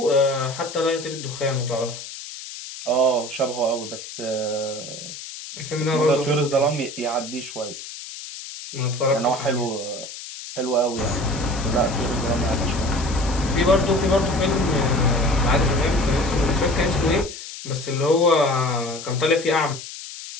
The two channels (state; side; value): noise; left; hiss, 11 dB below the sound